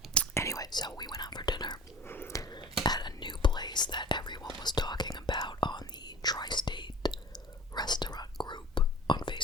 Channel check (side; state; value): both; normal; correlation 0.41